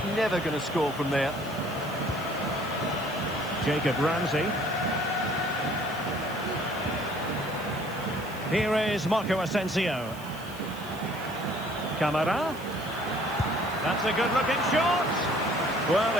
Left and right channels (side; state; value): right; noise; hiss, 19 dB below the sound